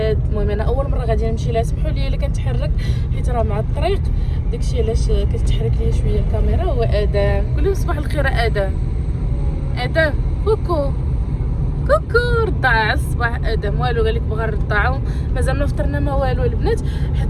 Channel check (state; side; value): identical; both; correlation 1.00